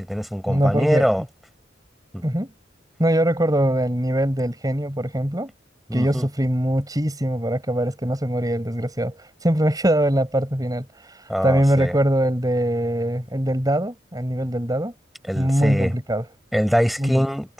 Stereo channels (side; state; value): both; normal; correlation 0.88